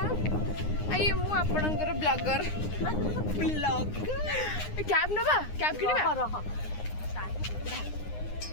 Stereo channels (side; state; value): right; late; 9.7 ms